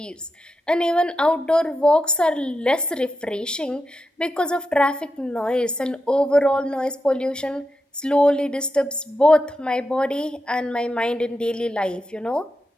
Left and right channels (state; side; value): normal; both; correlation 0.88